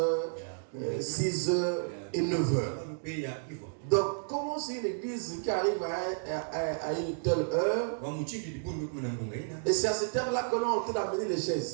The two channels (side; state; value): left; silent; digital silence